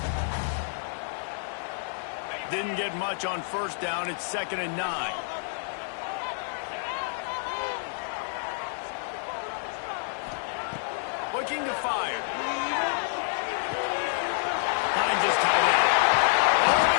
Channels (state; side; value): silent; right; 58 dB below the other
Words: Didn't get much on first down. It's 2nd and 9. Looking to fire. Finds his tight end. Oh,